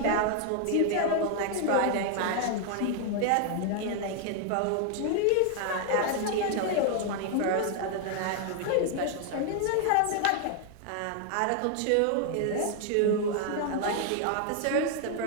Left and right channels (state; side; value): different; both; correlation 0.00